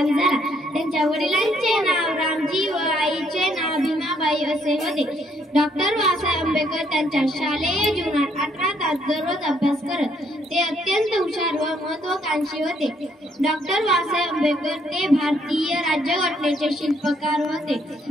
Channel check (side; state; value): both; normal; correlation 0.69